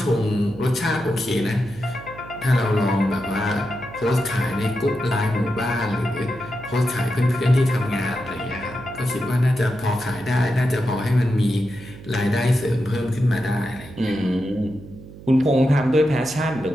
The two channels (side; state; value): right; noise; hum, 17 dB below the sound